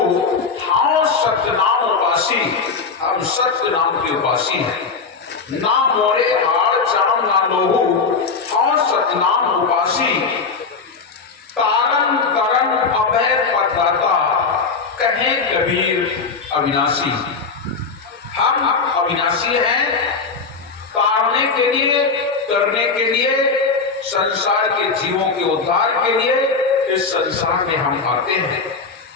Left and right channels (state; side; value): quieter; right; 4.8 dB